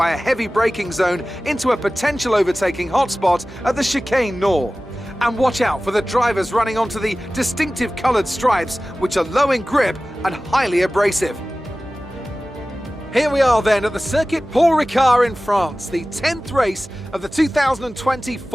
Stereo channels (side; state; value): right; noise; hum, 19 dB below the sound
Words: a heavy braking zone into a potential overtaking hotspot at the Chicane Nord. And watch out for the drivers running onto the distinctive coloured stripes, which are low in grip and highly abrasive. Here we are then at the Circuit Paul Ricard in France, the 10th race of the 2020